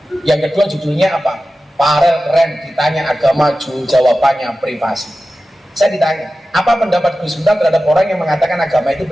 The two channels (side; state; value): both; normal; correlation 0.94